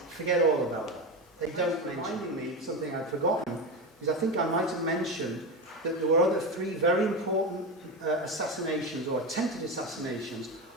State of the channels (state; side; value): normal; both; correlation 0.18